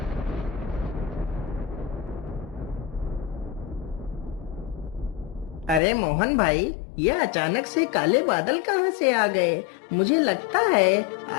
अरे मोहन भाई, यह अचानक से काले बादल कहाँ से आ गए। मुझे लगता है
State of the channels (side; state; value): right; drops out; at 5.8 s